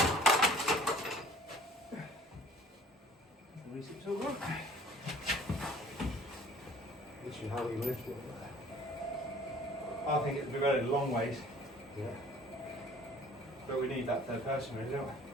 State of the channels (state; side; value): normal; both; correlation 0.52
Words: The research tool work. Literally, how we lift it. I think it'd be very long ways. Yeah. But we need that third person, really, don't we?